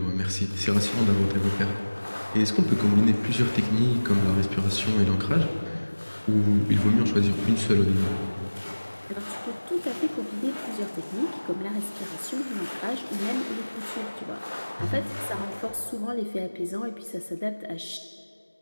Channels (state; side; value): inverted; both; correlation -1.00